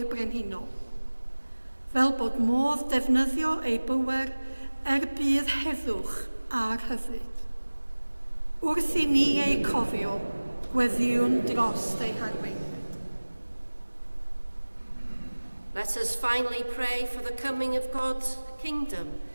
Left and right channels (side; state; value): both; inverted; correlation -1.00